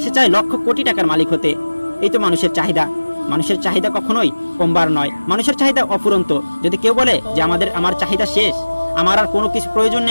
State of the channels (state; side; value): inverted; both; correlation -1.00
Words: সে চায় লক্ষ কোটি টাকার মালিক হতে। এই তো মানুষের চাহিদা। মানুষের চাহিদা কখনোই কমবার নয়। মানুষের চাহিদা অফুরন্ত। যদি কেউ বলে যে আমার চাহিদা শেষ, আমার আর কোনো কিছু প্রয়োজন